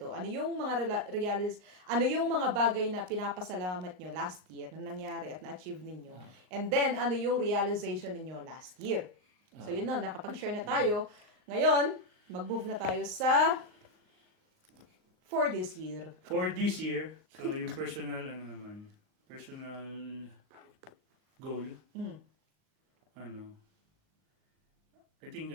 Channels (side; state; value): left; late; 39 ms